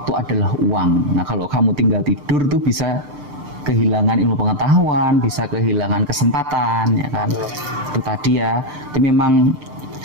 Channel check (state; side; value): late; left; 6.8 ms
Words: adalah uang. Nah, kalau kamu tinggal tidur tuh bisa kehilangan ilmu pengetahuan, bisa kehilangan kesempatan ya kan. Itu tadi ya. Itu memang